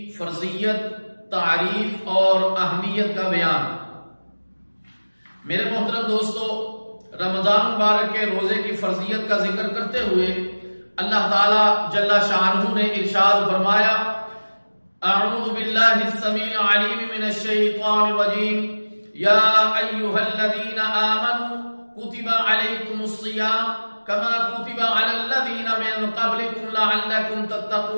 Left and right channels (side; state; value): both; inverted; correlation -1.00